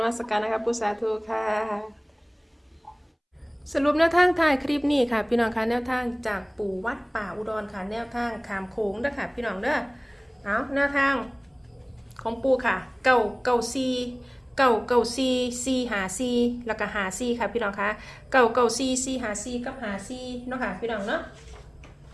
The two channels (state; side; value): identical; both; correlation 1.00